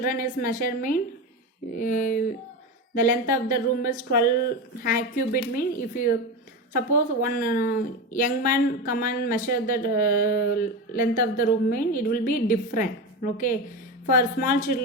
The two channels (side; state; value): both; normal; correlation 0.20